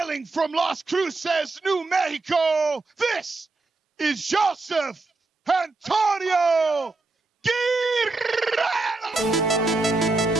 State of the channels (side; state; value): left; quieter; 3.5 dB